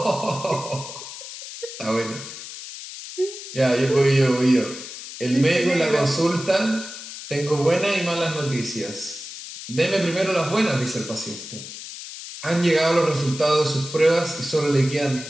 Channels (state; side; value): noise; left; hiss, 11 dB below the sound